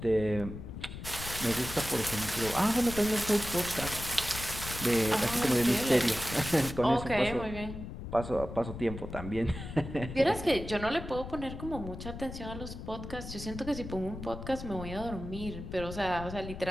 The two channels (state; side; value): noise; left; rumble, 9 dB below the sound